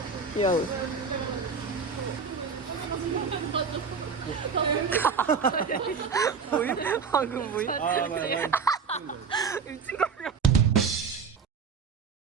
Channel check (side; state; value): left; quieter; 5.5 dB